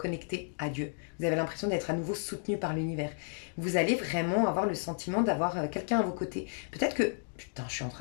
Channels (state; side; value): silent; right; digital silence